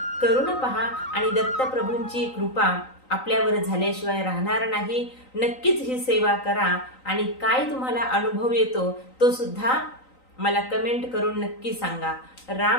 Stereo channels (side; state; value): right; late; 3.9 ms